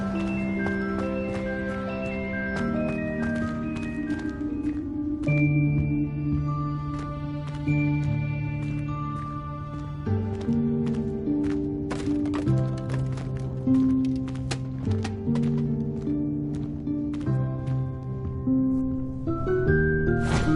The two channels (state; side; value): identical; both; correlation 1.00